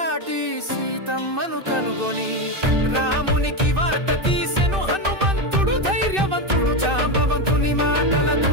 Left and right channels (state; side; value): late; left; 2.6 ms